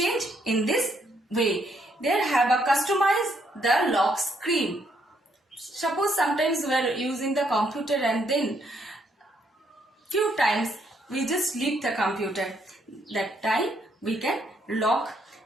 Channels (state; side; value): normal; both; correlation 0.72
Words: in this way. There have a customize the lock screen. Suppose sometimes we are using the computer and then few times we just leave the computer. That time we can